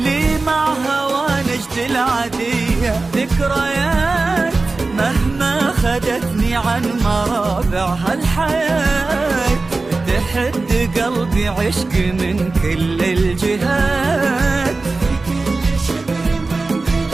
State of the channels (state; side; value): quieter; left; 3.6 dB